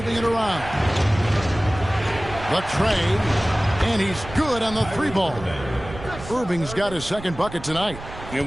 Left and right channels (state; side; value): noise; right; rumble, 13 dB below the sound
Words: it around. The trade, and he's good on the 3-ball. Irving's got his second bucket tonight.